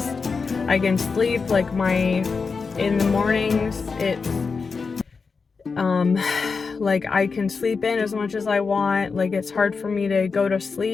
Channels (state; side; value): quieter; right; 4.9 dB